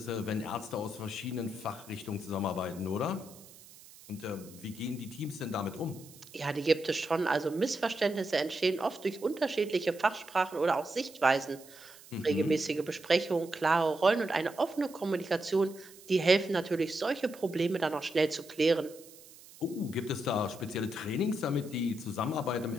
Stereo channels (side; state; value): right; noise; hiss, 21 dB below the sound